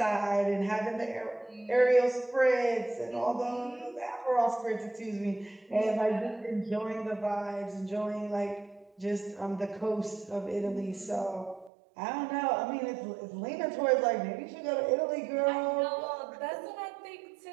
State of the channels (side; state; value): left; drops out; at 11.7 s